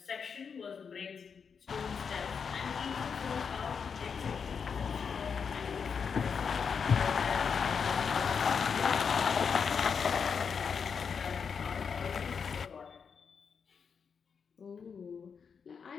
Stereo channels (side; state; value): right; quieter; 6.3 dB